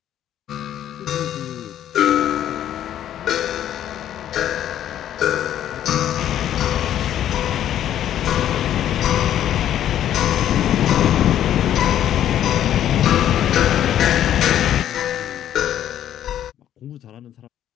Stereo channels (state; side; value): quieter; right; 11.1 dB